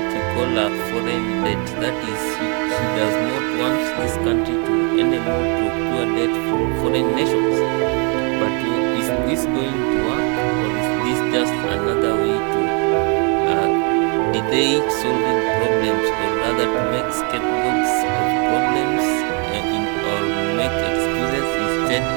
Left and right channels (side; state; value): left; quieter; 35.2 dB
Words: we call a foreign debt. That is, he does not want this country to anymore procure debt from foreign nations. But is this going to work, or is this just another way to delay solving problems, or rather to make scapegoats of problems or make excuses instead